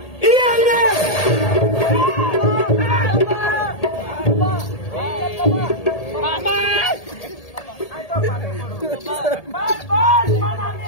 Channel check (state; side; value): late; right; 1.8 ms